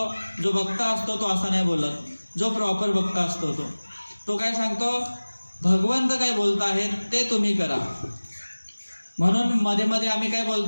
जो वक्ता असतो, तो असं नाही बोलत. जो प्रॉपर वक्ता असतो तो काय सांगतो, भगवंत काय बोलत आहेत ते तुम्ही करा. म्हणून मध्ये मध्ये आम्ही काय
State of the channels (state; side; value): inverted; both; correlation -1.00